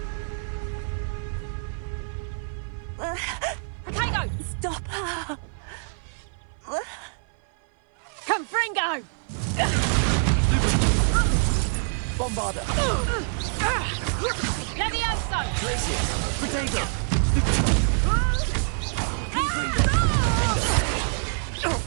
Stop her! Fringo! Bombarder! Levioso! Glacier! Protego! Confringo!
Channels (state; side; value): silent; left; 56 dB below the other